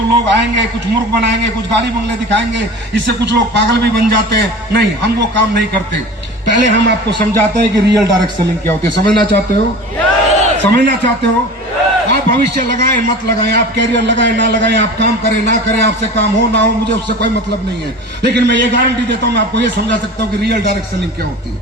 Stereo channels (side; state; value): both; normal; correlation 0.36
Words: लोग आएंगे, कुछ मूर्ख बनाएंगे, कुछ गाड़ी बंगले दिखाएंगे, इससे कुछ लोग पागल भी बन जाते हैं। नहीं, हम वो काम नहीं करते। पहले हम आपको समझाते हैं कि रियल डायरेक्ट सेलिंग क्या होती है। समझना चाहते हो? समझना चाहते हो? आप भविष्य लगाएं मत लगाएं, आप कैरियर लगाएं ना लगाएं, आप काम करें ना करें, आपसे काम हो ना हो, मुझे उससे कोई मतलब नहीं है। लेकिन मैं ये गारंटी देता हूं, मैं आपको ये समझा सकता हूं कि रियल डायरेक्ट सेलिंग क्या होती